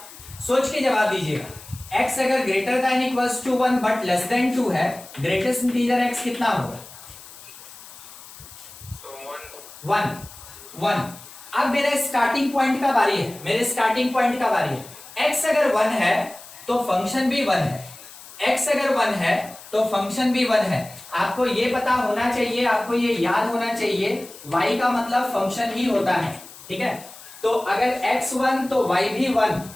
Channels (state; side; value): noise; left; hiss, 18 dB below the sound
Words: सोच के जवाब दीजिएगा। x अगर greater than equals to 1 but less than 2 है, ग्रेटेस्ट इंटीजर x कितना होगा? 1। अब मेरे स्टार्टिंग पॉइंट का बारी है, x अगर 1 है तो फंक्शन भी 1 है, x अगर 1 है तो फंक्शन भी 1 है। आपको ये पता होना चाहिए, आपको ये याद होना चाहिए, y का मतलब फंक्शन ही होता है। ठीक है, तो अगर x 1 तो y भी 1,